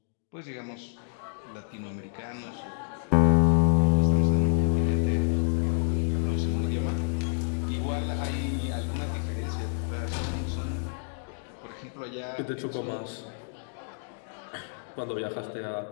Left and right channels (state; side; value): silent; right; digital silence